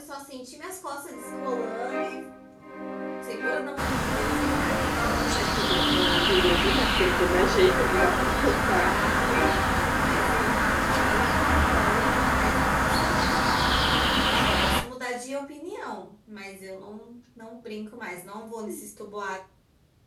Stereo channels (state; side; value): identical; both; correlation 1.00